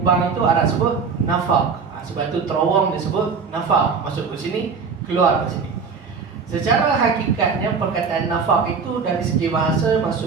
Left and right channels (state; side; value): quieter; left; 5.4 dB